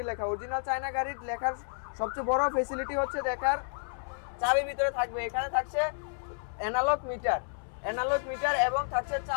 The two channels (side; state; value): right; silent; 57 dB below the other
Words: লেখা। অরিজিনাল চায়না গাড়ির লেখার সবচেয়ে বড় ফ্যাসিলিটি হচ্ছে দেখার চাবির ভিতরে থাকবে। এখানে থাকছে অ্যানালগ মিটার এবং থাকছে